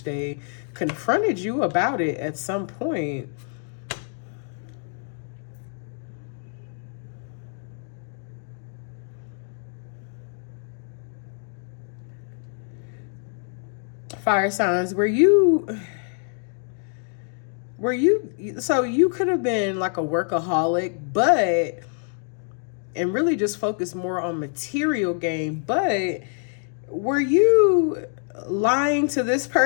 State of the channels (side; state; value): right; silent; 56 dB below the other